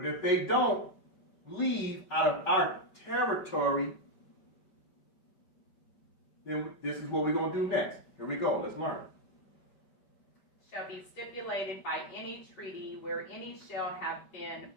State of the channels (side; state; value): right; late; 5.1 ms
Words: if they don't leave out of our territory, then this is what we're going to do next. Here we go. Let's learn. Shall be stipulated by any treaty where any shall have been